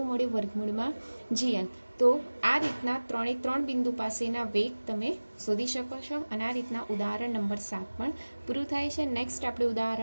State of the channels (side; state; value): both; inverted; correlation -1.00